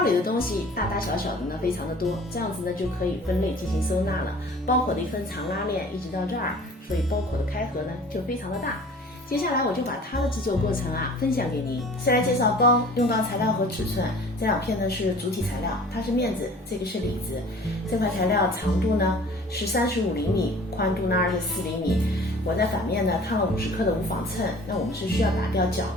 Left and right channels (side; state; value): both; normal; correlation 0.47